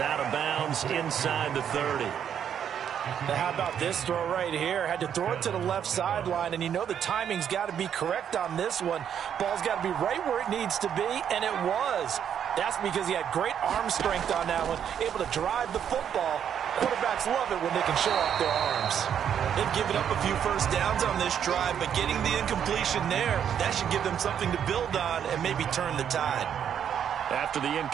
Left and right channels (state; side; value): quieter; left; 8.8 dB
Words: of bounds inside the 30. Now how about this throw right here? Had to throw it to the left sideline, and you know the timing's got to be correct on this one. Ball's got to be right where it needs to be, and it was. That's because he had great arm strength on that one, able to drive the football. Quarterbacks love it when they can show off their arms. They've given up a few first downs on this drive, but getting the incompletion there, that should give them something to build on and maybe turn the tide. After the